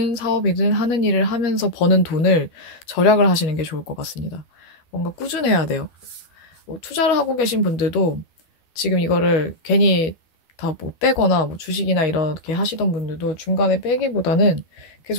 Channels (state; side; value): late; right; 12 ms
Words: 사업이든 하는 일을 하면서 버는 돈을 절약을 하시는 게 좋을 것 같습니다. 뭔가 꾸준해야 돼요. 뭐 투자를 하고 계신 분들도 지금 이거를 괜히 다 뭐 빼거나 뭐 주식이나 이렇게 하시던 분들도 중간에 빼기보다는